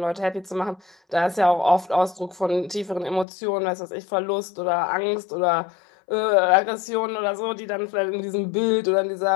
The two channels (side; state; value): right; drops out; at 3.2 s